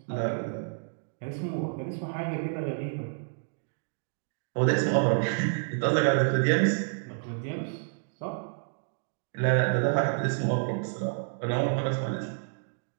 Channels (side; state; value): left; silent; digital silence